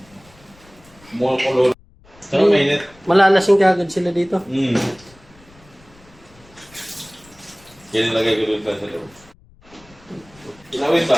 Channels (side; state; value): left; noise; rumble, 27 dB below the sound